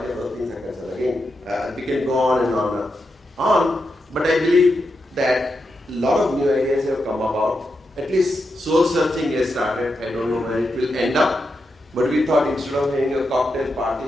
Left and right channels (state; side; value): normal; both; correlation 0.86